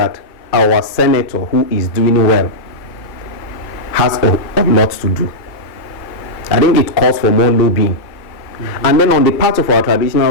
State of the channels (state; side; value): late; right; 2.2 ms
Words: our senator, who is doing well, has a lot to do. I think it calls for more lobbying. And then on the part of our